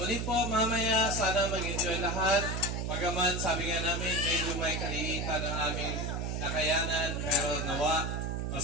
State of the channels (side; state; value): right; noise; hum, 2 dB below the sound